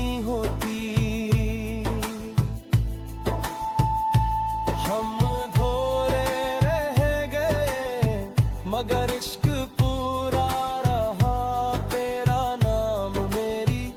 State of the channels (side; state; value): both; identical; correlation 1.00